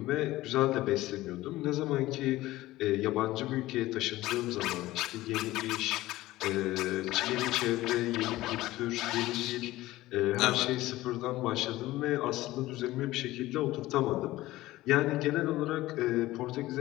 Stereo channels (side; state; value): right; quieter; 17.1 dB